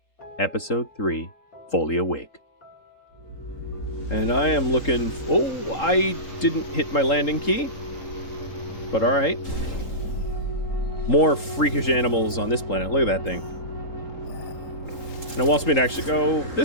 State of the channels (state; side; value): late; right; 3.8 ms